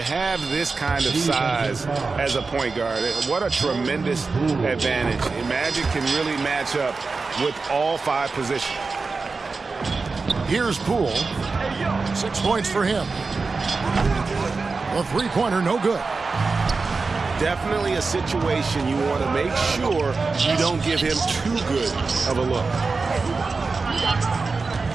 have this kind of size as a point guard, what a tremendous advantage. Magic can really match up with all 5 positions. Here's Poole. 6 points for him. A 3-pointer, no good. Definitely a situation you want to make sure you don't give him too good of a look.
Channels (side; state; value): left; quieter; 4.2 dB